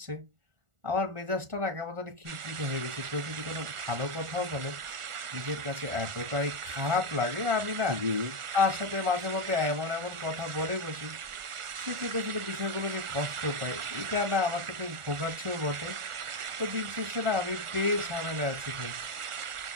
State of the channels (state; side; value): late; left; 1.4 ms